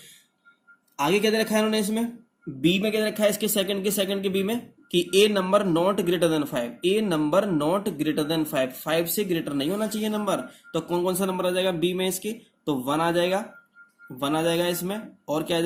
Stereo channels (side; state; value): both; identical; correlation 1.00